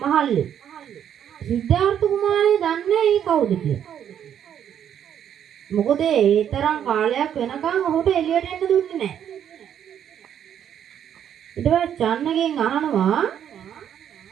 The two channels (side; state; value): left; quieter; 9.4 dB